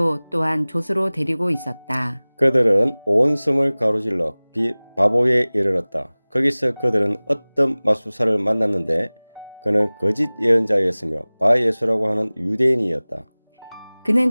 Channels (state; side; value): inverted; both; correlation -1.00